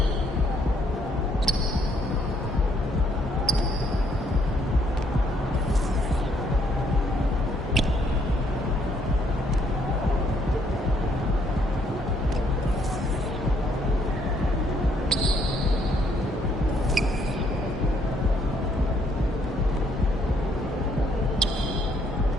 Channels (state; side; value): normal; both; correlation 0.69